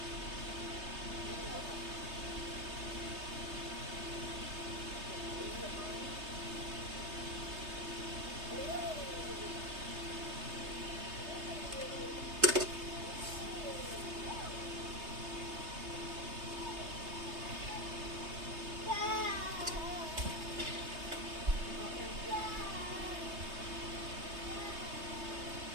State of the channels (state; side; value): late; left; 3.2 ms